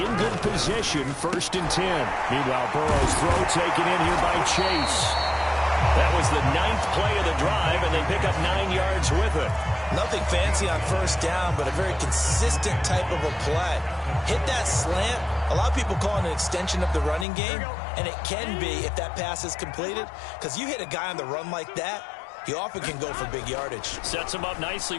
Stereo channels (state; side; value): drops out; right; at 17.2 s